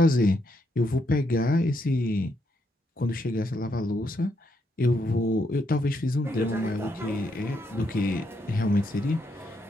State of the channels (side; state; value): both; normal; correlation 0.77